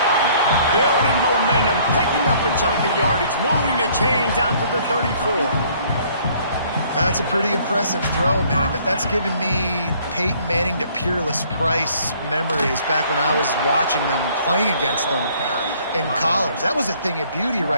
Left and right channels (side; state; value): both; inverted; correlation -0.60